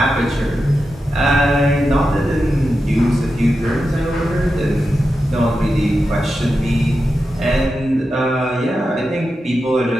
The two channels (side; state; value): both; normal; correlation 0.90